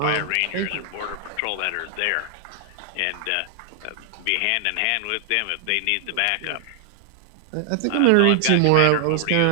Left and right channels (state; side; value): different; both; correlation 0.00